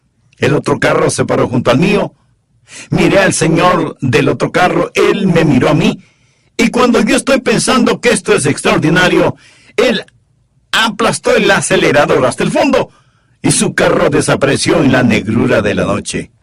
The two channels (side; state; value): both; identical; correlation 1.00